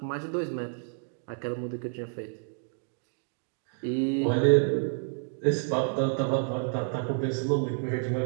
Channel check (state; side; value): silent; left; digital silence